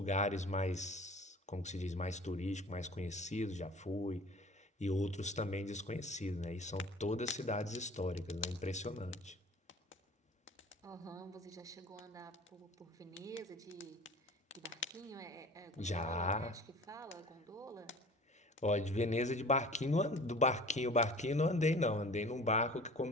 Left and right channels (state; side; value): normal; both; correlation 0.44